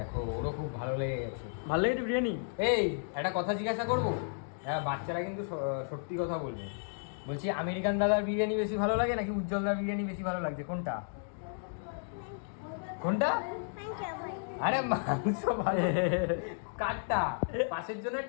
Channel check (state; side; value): silent; right; digital silence